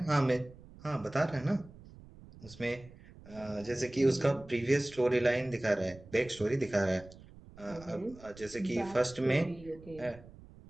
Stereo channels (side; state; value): right; noise; rumble, 20 dB below the sound